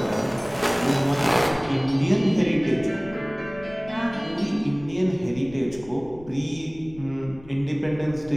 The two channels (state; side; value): noise; left; rumble, 20 dB below the sound